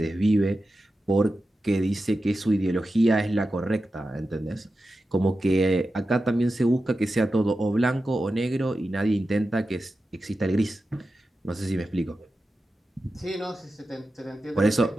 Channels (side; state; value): both; normal; correlation 0.92